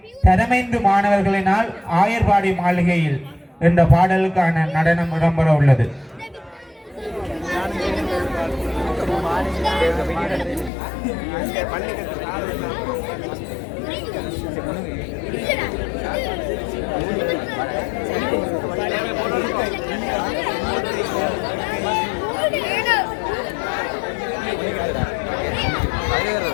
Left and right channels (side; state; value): right; drops out; at 10.7 s